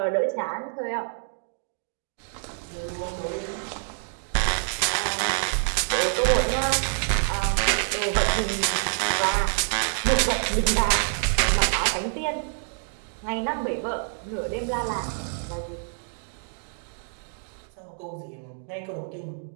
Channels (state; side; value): silent; left; 60 dB below the other